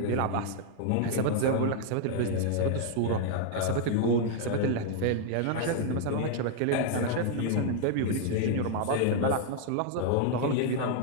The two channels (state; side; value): different; both; correlation -0.01